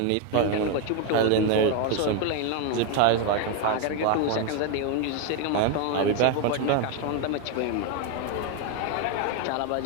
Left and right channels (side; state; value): both; different; correlation 0.01